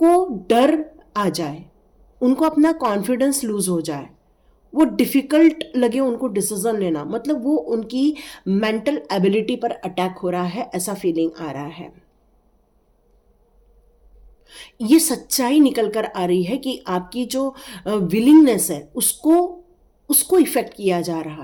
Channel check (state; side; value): identical; both; correlation 1.00